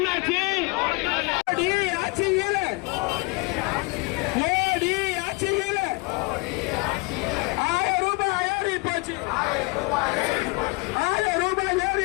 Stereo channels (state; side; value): quieter; right; 27.0 dB